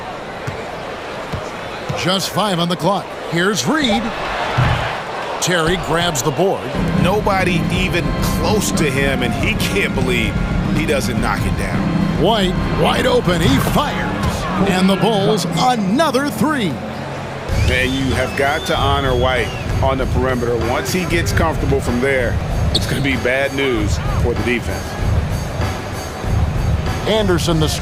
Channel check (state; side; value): identical; both; correlation 1.00